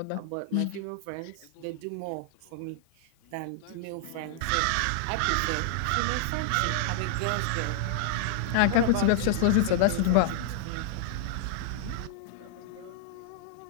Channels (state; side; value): different; both; correlation -0.01